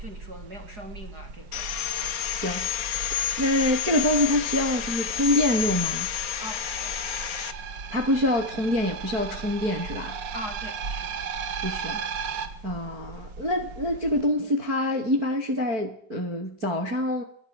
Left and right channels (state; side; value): late; left; 4.3 ms